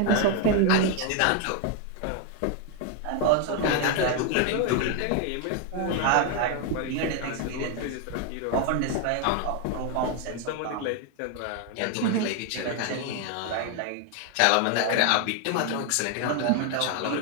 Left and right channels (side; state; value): both; different; correlation 0.01